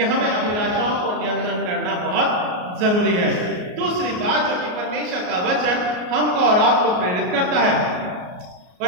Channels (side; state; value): left; late; 33 ms